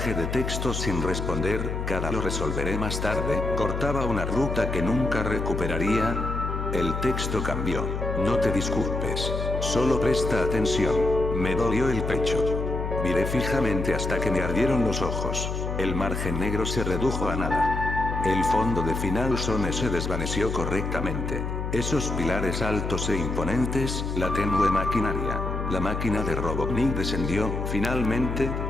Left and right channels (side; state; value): left; noise; hum, 3 dB below the sound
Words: de texto sin responder, cada lo resolveré más tarde, cortaba una ruta que nunca recuperaría? El texto cambió. No te disculpes. Solo presta atención. Me dolió el pecho. Miré fijamente hasta que me ardieron los ojos. El margen negro se redujo a nada. El fondo de Final Zone se desvaneció correctamente. Esos pilares altos e imponentes, la tenue maquinaria. La máquina de Robotnik descendió, finalmente,